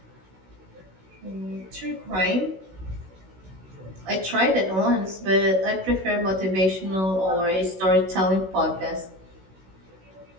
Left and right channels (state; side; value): late; left; 16 ms